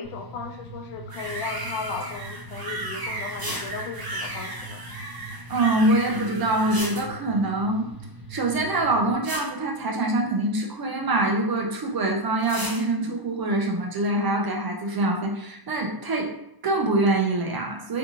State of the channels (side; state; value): left; late; 1.0 ms